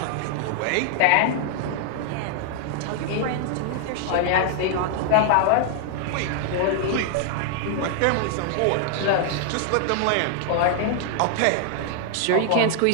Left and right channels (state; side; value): different; both; correlation 0.00